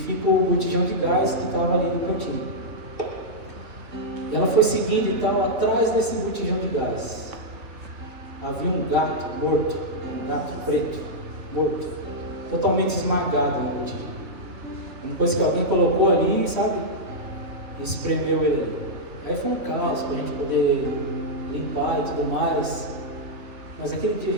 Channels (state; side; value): late; left; 3.0 ms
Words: o botijão de gás que estava ali no cantinho. E ela foi seguindo e tal, atrás desse botijão de gás havia um gato morto, um gato preto, morto, totalmente esmagado no botijão. Uma coisa que alguém colocou ali, sabe? E espremeu ele ali. Aí foi um caos para a gente poder limpar e tudo mais. Mas aquele dia a